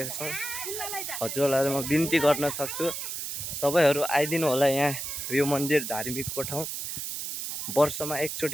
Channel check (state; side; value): noise; right; hiss, 5 dB below the sound